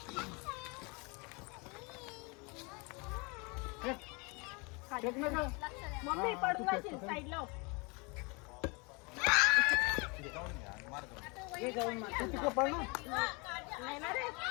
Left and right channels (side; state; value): right; quieter; 29.6 dB